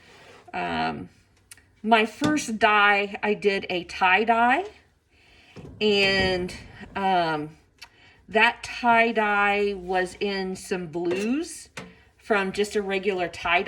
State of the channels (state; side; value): identical; both; correlation 1.00